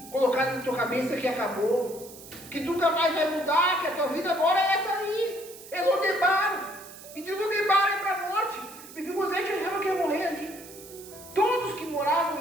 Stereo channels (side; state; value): right; noise; hiss, 17 dB below the sound